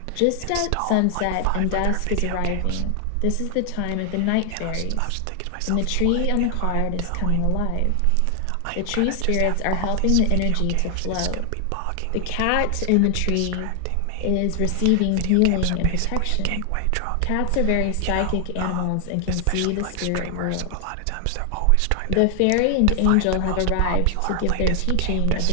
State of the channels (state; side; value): different; both; correlation 0.00